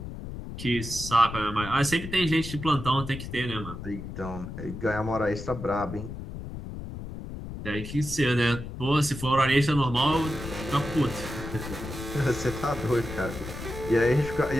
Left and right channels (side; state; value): left; noise; rumble, 9 dB below the sound